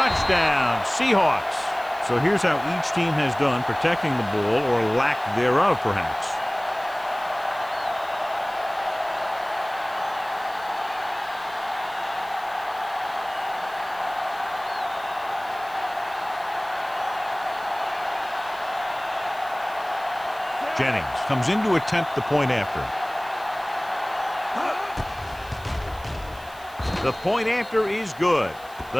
Seahawks. So here's how each team has done protecting the ball, or lack thereof, perhaps. Jennings comes in to attempt the point after. The point after is good.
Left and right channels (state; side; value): noise; right; hiss, 22 dB below the sound